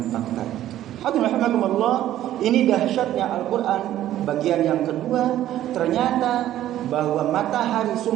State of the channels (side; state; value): left; quieter; 12.9 dB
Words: fakta itu. Hadirin rahimakumullah, ini dahsyatnya Al-Quran. Bagian yang kedua, ternyata bahwa matahari